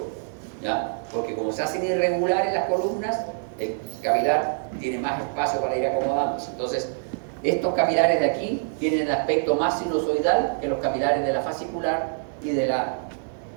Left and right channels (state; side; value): silent; left; digital silence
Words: ¿ya? Porque como se hacen irregulares las columnas, el capilar tiene más espacio para ir acomodándose. Entonces, estos capilares de aquí tienen el aspecto más sinusoidal que los capilares de la fascicular y de la